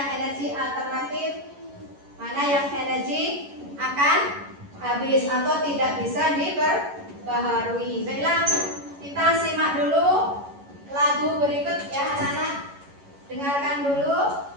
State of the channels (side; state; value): left; late; 11 ms